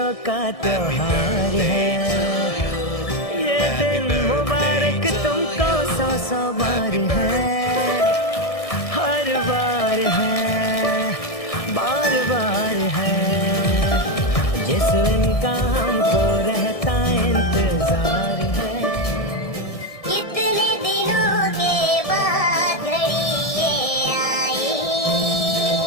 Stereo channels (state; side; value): late; right; 1.6 ms